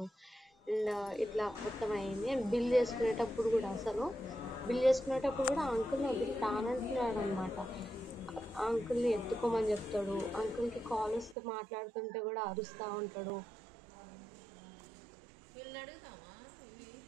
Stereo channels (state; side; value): drops out; left; at 11.4 s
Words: అండ్ ఇట్లా మొత్తం అయింది. అండ్ బిల్ చేసుకునేటప్పుడు కూడా అసలు బిల్ చేసుకునేటప్పుడు కూడా అంకుల్ని వదిలి తానంటున్నాడు అనమాట. అంకుల్ని ఎత్తుకోమని చెప్తాడు. అంకుల్కి కాల్ వస్తే మాట్లాడుతుంటే కూడా అరుస్తూ ఉంటాడు. వీళ్ళని అడుగుతామా ఇవి